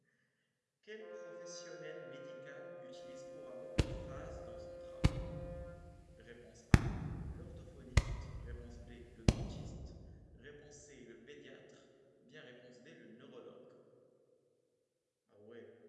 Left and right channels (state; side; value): identical; both; correlation 1.00